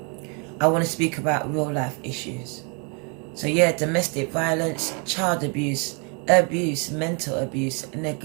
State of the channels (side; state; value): left; quieter; 34.0 dB